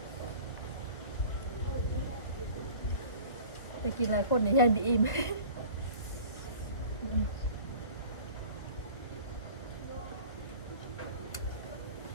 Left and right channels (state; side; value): late; right; 1.3 ms